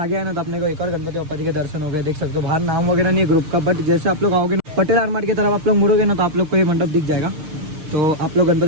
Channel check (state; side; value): late; left; 6.6 ms